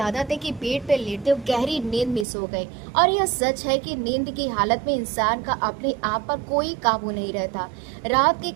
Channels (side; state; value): left; drops out; at 2.2 s